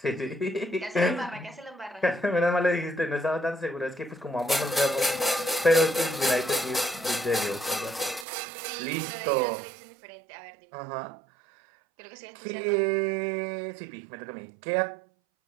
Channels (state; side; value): drops out; left; at 8.2 s